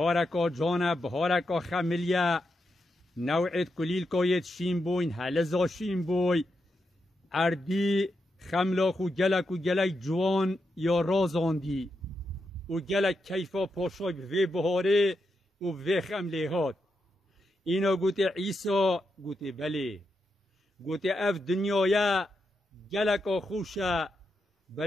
جانه بهارکا خملیه نوعیت کلیل کایت شیم بوین هلزا شیم بوی اردی خملاخ و گلک جوان یا رازاندی و گلک کیفا پاشای به بهاره و به خمله هات اینا گوته عیسا گوته بله گوته اف دنیای گلک خوشه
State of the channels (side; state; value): both; normal; correlation 0.85